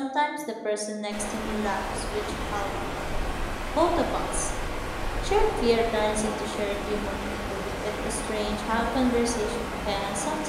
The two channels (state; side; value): identical; both; correlation 1.00